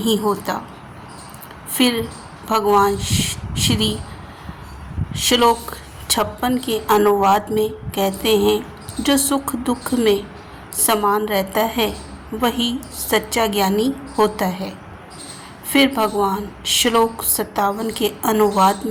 होता। फिर भगवान श्री श्लोक 56 के अनुवाद में कहते हैं, जो सुख दुख में समान रहता है वही सच्चा ज्ञानी होता है। फिर भगवान श्लोक 57 के अनुवाद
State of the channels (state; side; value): identical; both; correlation 1.00